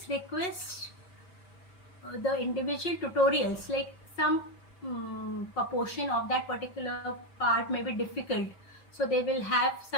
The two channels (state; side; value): late; right; 5.5 ms